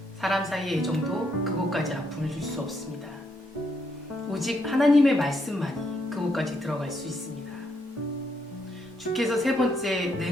사람 사이의 애정도 그곳까지 아픔을 줄 수 없습니다. 오직 하나님의 말씀만이 그곳까지 들어갈 수 있습니다. 주께서 세 번째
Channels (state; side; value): normal; both; correlation 0.76